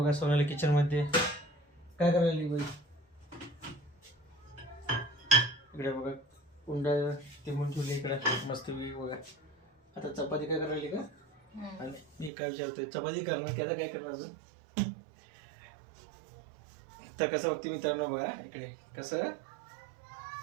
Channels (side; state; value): left; drops out; at 12.3 s